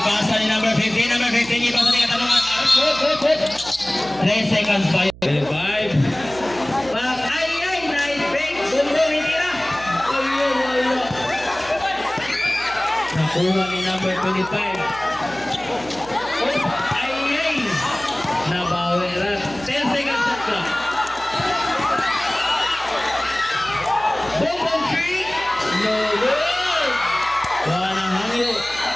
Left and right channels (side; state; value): right; noise; hum, 19 dB below the sound